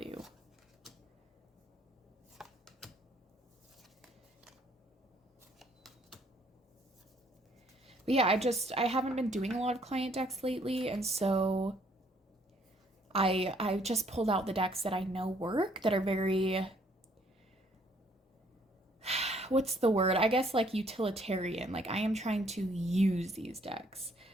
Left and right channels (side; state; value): both; normal; correlation 0.64